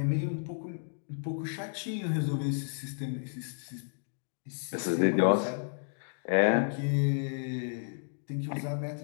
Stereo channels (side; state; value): right; silent; digital silence